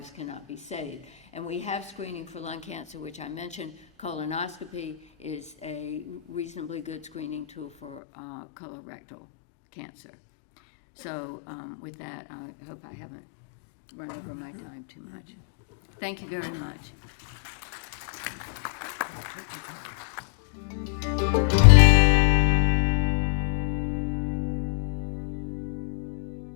cannot be saved. And we have screening for lung cancer, which I mentioned. Colonoscopy is a reasonably good screening tool for colorectal cancer. So with that, I hope I haven't run over my time too much. Thank you very much.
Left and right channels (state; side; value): drops out; right; at 8.0 s